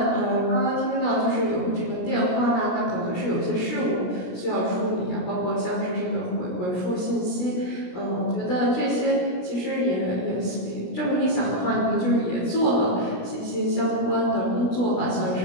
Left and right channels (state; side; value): late; right; 17 ms